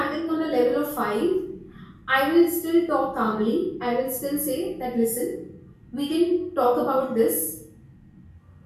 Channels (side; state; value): both; identical; correlation 1.00